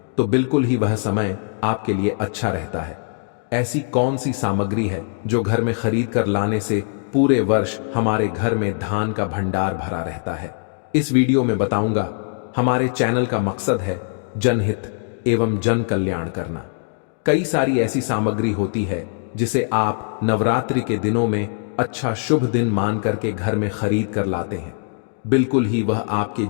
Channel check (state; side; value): silent; right; 65 dB below the other